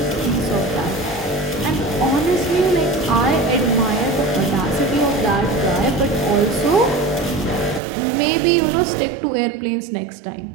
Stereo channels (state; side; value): drops out; left; at 7.8 s